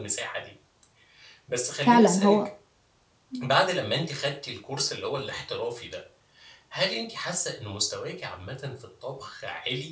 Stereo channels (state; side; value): identical; both; correlation 1.00